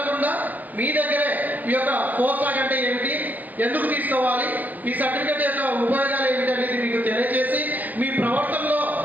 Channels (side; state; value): left; late; 0.082 ms